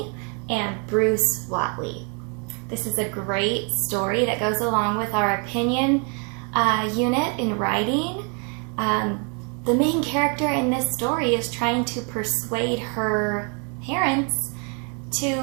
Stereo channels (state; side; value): quieter; left; 36.8 dB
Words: and Bruce Watley. This is a great story that goes along with our opinion unit in writing. The main character in this story is trying to persuade her parents